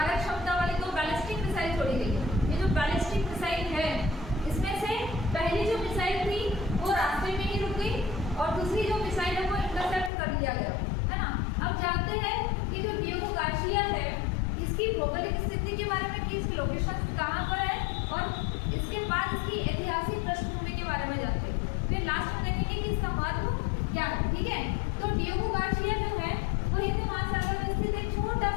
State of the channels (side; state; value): right; drops out; at 10.1 s